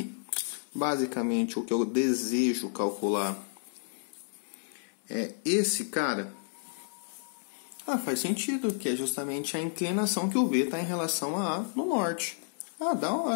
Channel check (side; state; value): right; silent; digital silence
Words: basicamente, o que eu desejo calcular é esse cara? Ah, faz sentido, que é justamente a inclinação que o V está em relação a A no norte. Ah, da